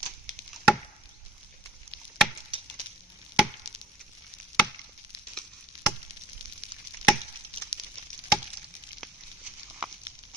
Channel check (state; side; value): normal; both; correlation 0.52